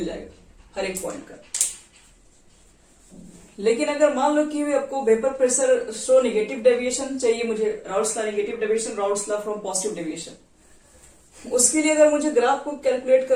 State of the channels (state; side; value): identical; both; correlation 1.00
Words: जाएगा हर एक पॉइंट का। लेकिन अगर मान लो कि आपको vapour pressure show negative deviation चाहिए, मुझे Raoult's law negative deviation, Raoult's law from positive deviation, उसके लिए अगर मुझे ग्राफ को कैलकुलेट